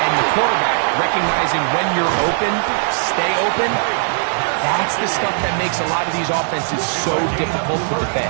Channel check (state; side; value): silent; left; 67 dB below the other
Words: and the quarterback, recognizing when you're open, stay open, that's the stuff that makes a lot of these offenses so difficult to